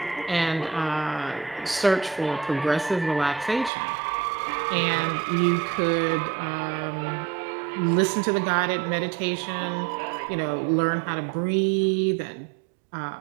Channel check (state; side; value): drops out; left; at 3.7 s